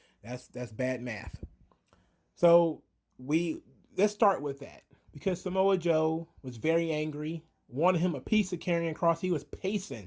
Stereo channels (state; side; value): identical; both; correlation 1.00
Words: That's bad math. So let's start with that, because Samoa Joe was very angry, wanted him a piece of Karrion Kross. He was